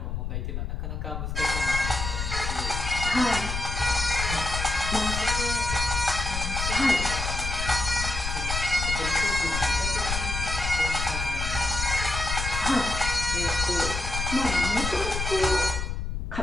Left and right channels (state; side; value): noise; left; rumble, 3 dB below the sound